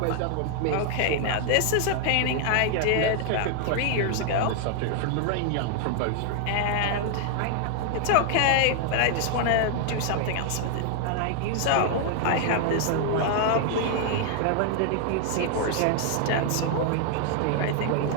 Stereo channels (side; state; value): both; different; correlation 0.00